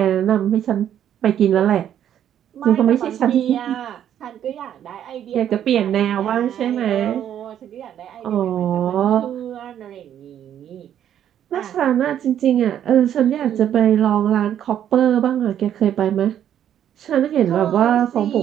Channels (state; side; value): quieter; left; 10.2 dB